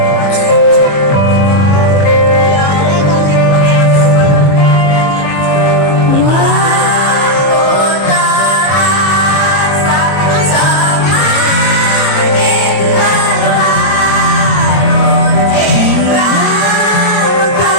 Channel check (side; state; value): right; late; 22 ms